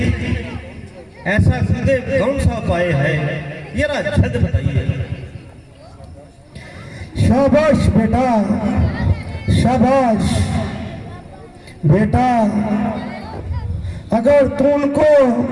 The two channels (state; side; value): identical; both; correlation 1.00